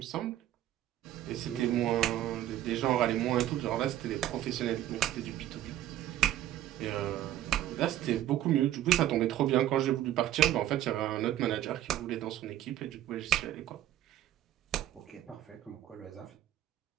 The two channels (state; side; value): quieter; left; 12.5 dB